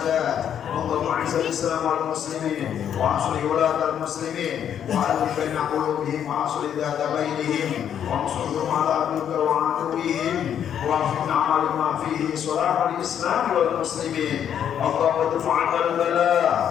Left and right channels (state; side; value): quieter; right; 9.2 dB